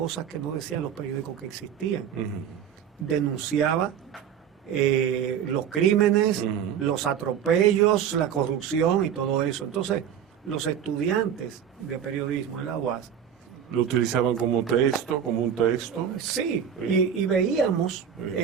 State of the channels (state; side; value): quieter; left; 8.6 dB